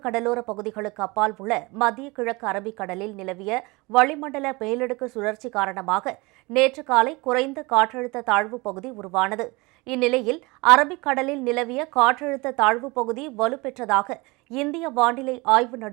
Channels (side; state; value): left; quieter; 24.9 dB